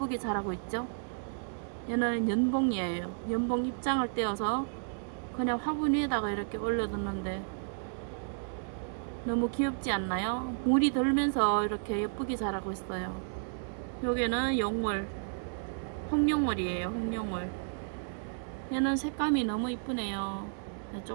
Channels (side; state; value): left; silent; digital silence